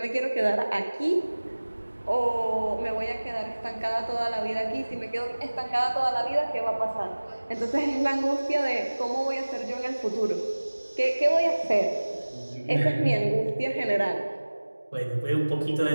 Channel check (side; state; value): both; inverted; correlation -1.00